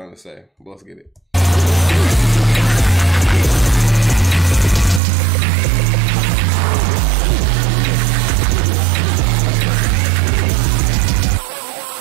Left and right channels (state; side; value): drops out; left; at 5.0 s